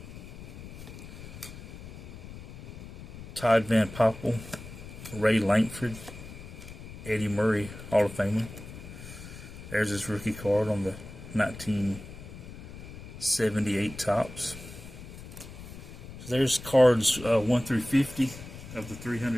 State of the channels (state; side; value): noise; left; rumble, 13 dB below the sound